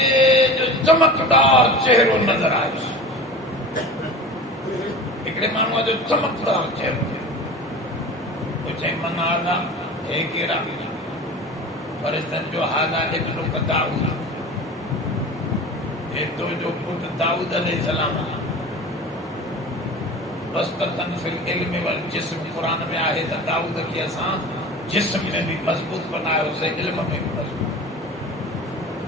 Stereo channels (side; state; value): both; normal; correlation 0.35